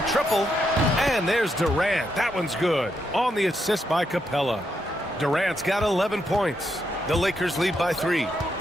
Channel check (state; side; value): normal; both; correlation 0.80